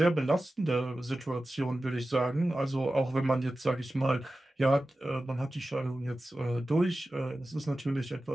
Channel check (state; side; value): normal; both; correlation 0.94